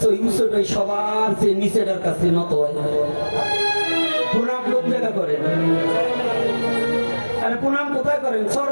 ওই উঁচুটাই সবার চেয়ে নিচেটার কাছে নত হয়। প্রণাম কোন জায়গা করেন? আরে প্রণাম কোথায় করেন?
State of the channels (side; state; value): both; inverted; correlation -1.00